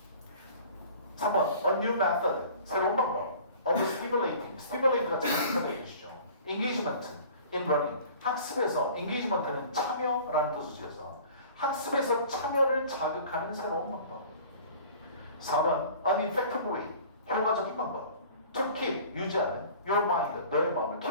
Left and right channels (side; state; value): both; inverted; correlation -0.46